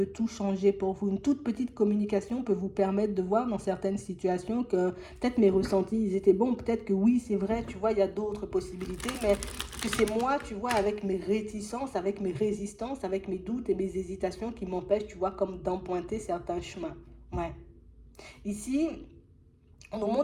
tout changer pour vous. Une toute petite communication peut vous permettre de voir dans certaines situations que peut-être mes ressentis, ils étaient bons. Peut-être que oui, c'est vrai, tu vois, il y a d'autres possibilités, mais que c'est moi, tu vois, avec mes réticences, avec mes résistances, avec mes doutes et mes hésitations qui m'empêchent, tu vois, comme d'emprunter certains chemins. Ouais. Ici, on nous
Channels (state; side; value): identical; both; correlation 1.00